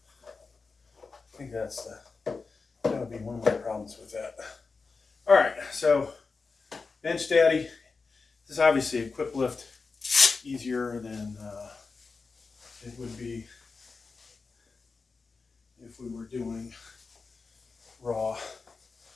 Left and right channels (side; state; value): right; quieter; 4.4 dB